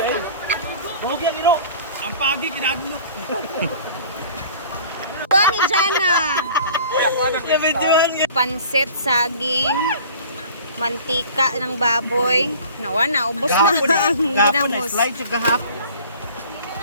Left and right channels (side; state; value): both; inverted; correlation -0.46